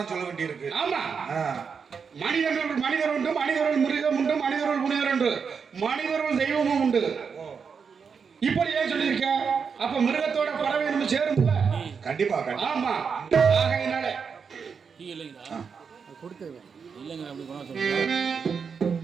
சொல்ல வேண்டி இருக்கு. ஆமா. மனிதர்கள் மனிதர் உண்டு, மனிதர்கள் மிருகம் உண்டு, மனிதர்கள் முனிவர் உண்டு, மனிதர்கள் தெய்வமும் உண்டு. இப்படி ஏன் சொல்லியிருக்க. அப்ப மிருகத்தோட பறவை நம்ம சேரும்ல. கண்டிப்பா. ஆமா. ஆகையினால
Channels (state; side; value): quieter; left; 6.0 dB